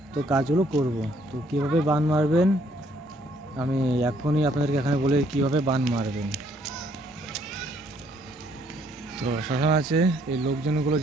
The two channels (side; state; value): both; normal; correlation 0.66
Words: তো কাজগুলো করব। তো কীভাবে বান মারবেন আমি এখনই আপনাদেরকে এখানে বলে কীভাবে বান মারবেন। তো শ্মশান আছে, এই লোকজনগুলো